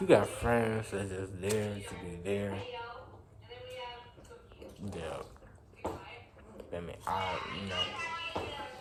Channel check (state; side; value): identical; both; correlation 1.00